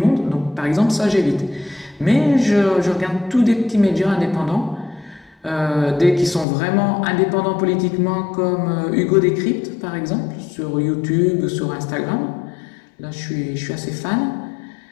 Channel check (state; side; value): drops out; right; at 6.5 s